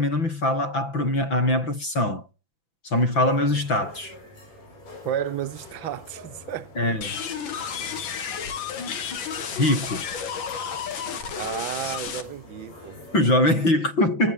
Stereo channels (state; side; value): late; right; 5.9 ms